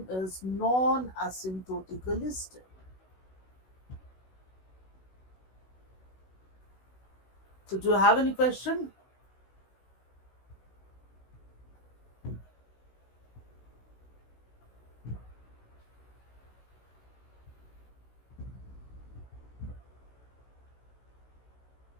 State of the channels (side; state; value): right; late; 16 ms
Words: is non-asymptotically stable. So do you have any question?